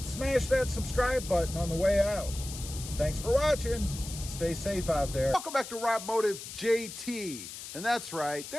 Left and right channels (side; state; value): left; noise; hiss, 11 dB below the sound